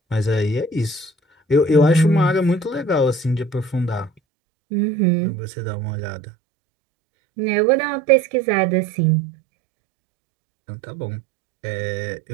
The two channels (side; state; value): left; drops out; at 4.1 s